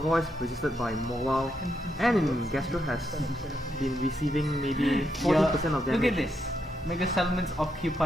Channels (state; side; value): normal; both; correlation 0.80